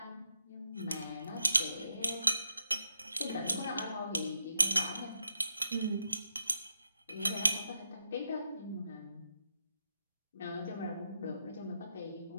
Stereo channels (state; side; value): inverted; both; correlation -0.83